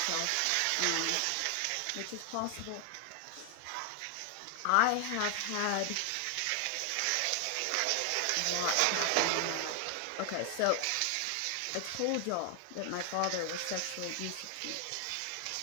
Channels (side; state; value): both; different; correlation 0.00